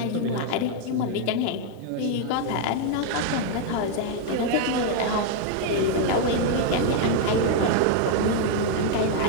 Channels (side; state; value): both; different; correlation 0.00